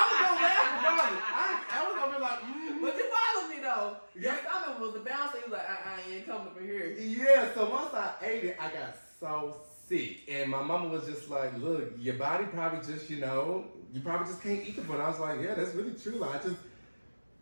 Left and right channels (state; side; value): inverted; both; correlation -1.00